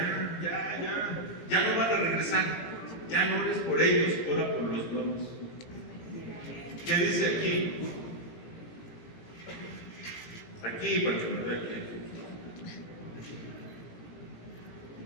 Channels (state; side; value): late; right; 17 ms